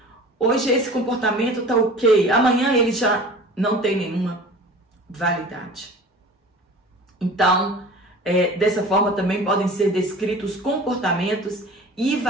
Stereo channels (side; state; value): both; normal; correlation 0.41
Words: Hoje esse comportamento está ok, amanhã ele já não tem nenhuma validade. Então, dessa forma também podem ser descritos os comportamentos e